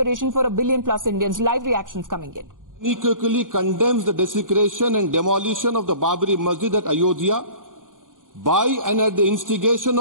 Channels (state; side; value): late; left; 0.89 ms